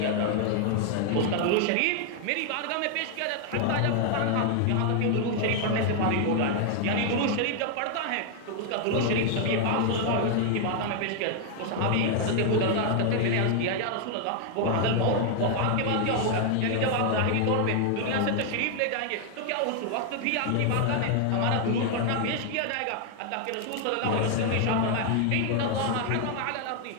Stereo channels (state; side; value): different; both; correlation 0.00